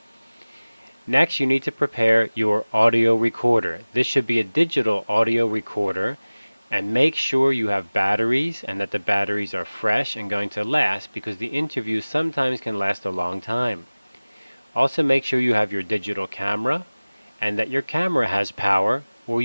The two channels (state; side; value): inverted; both; correlation -0.99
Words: Next, you need to prepare your audio recorder. This should be a digital audio recorder, and make sure you have batteries and that the batteries are fresh and going to last, because the interviews sometimes can last a long time. Also make sure you have your digital camera and that your camera has power, or